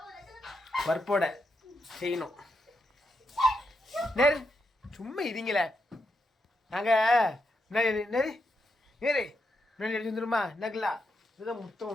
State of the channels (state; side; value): normal; both; correlation 0.83